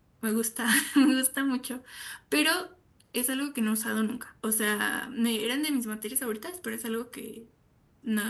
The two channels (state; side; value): identical; both; correlation 1.00